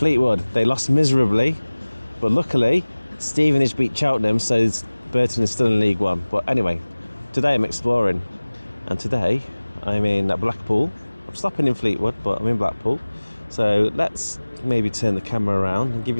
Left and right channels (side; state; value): both; inverted; correlation -1.00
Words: They lost miserably, but luckily Stevenage beat Cheltenham, so Burton is still in League One. But anyway, today I'm exploring, and today I'm in Blackpool. I'm stopping in Fleetwood, but I'm in Blackpool. So let's maybe turn the camera around and give